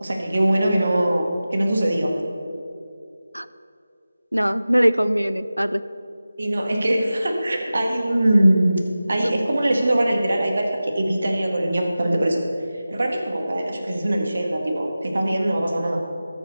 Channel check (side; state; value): both; inverted; correlation -0.96